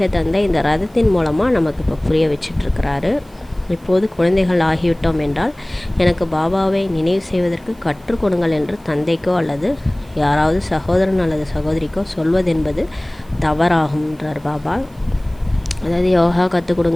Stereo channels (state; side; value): noise; right; hiss, 30 dB below the sound